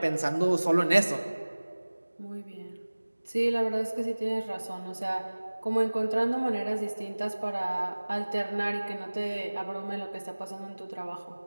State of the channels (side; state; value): both; inverted; correlation -1.00